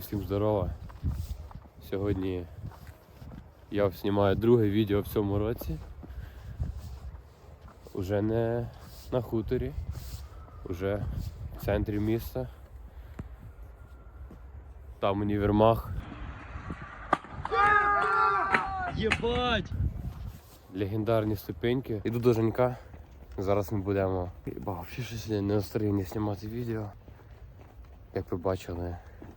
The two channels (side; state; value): both; identical; correlation 1.00